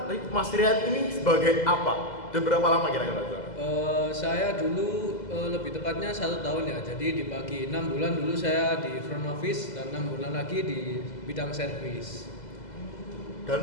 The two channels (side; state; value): right; late; 2.0 ms